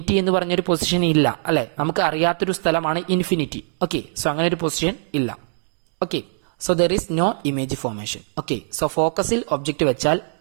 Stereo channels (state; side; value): silent; left; digital silence